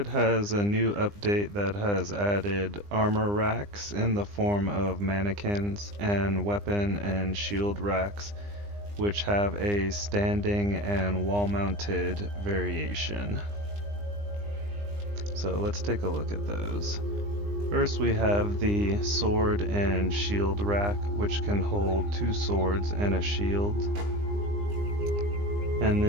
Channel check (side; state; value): left; late; 20 ms